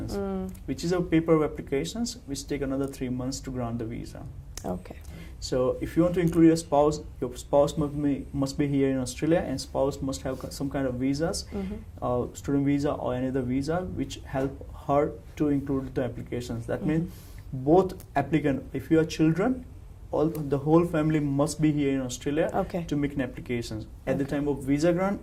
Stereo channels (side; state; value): both; identical; correlation 1.00